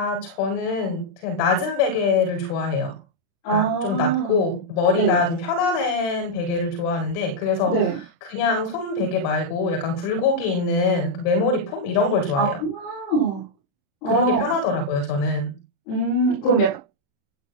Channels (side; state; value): right; late; 36 ms